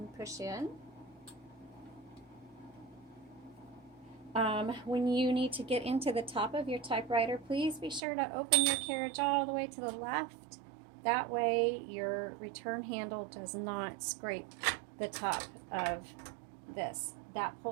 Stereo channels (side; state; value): left; drops out; at 8.0 s